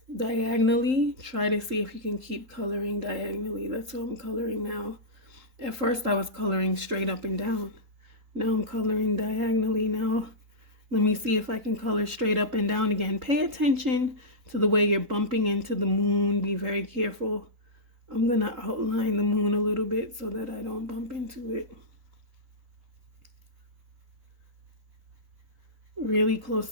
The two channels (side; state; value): left; late; 3.8 ms